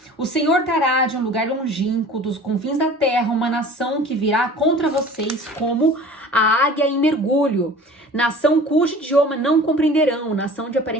o Senhor trará de um lugar longínquo, dos confins da terra, uma nação que virá contra vocês como a águia em mergulho, nação cujo idioma não compreenderão, nação de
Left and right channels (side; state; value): both; normal; correlation 0.43